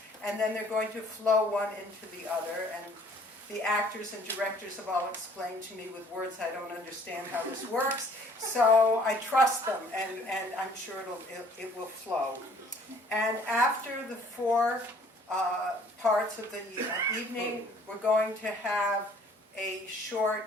and then they're going to flow one into the other, and the actors and directors have all explained to me with words I don't understand how this works, so I trust them, and I'm sure it will flow. And after the four parts of the evening, we're going to have a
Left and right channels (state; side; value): normal; both; correlation 0.57